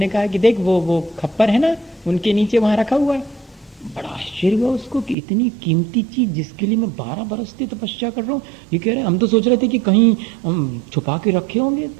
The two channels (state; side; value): drops out; left; at 5.2 s